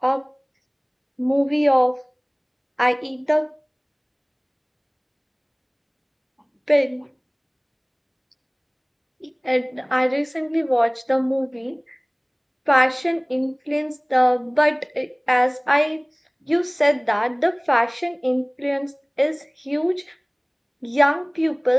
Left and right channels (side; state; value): both; identical; correlation 1.00